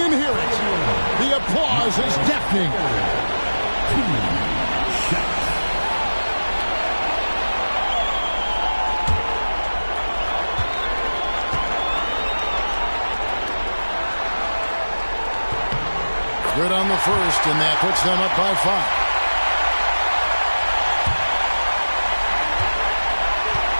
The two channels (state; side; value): inverted; both; correlation -1.00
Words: hear it. The applause is deafening. Good on the first, and that puts them up by 5.